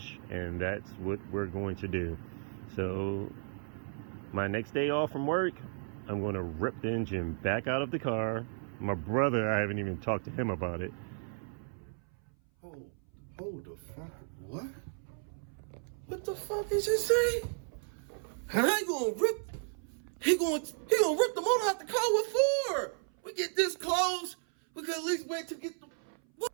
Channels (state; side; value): silent; left; 55 dB below the other